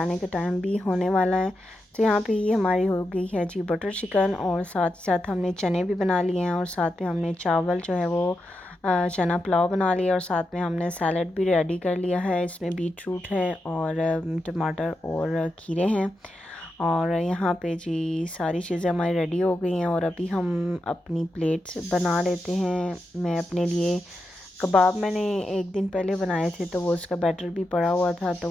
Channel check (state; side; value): normal; both; correlation 0.87